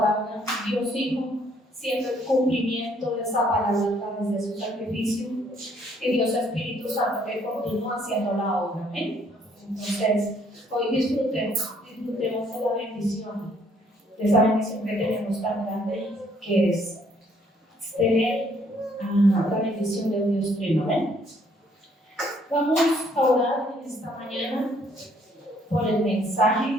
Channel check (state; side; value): normal; both; correlation 0.65